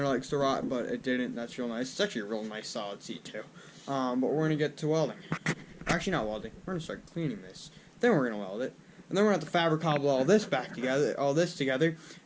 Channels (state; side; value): identical; both; correlation 1.00